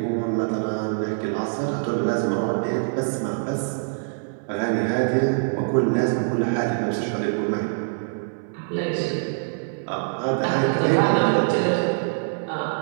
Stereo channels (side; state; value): left; silent; 62 dB below the other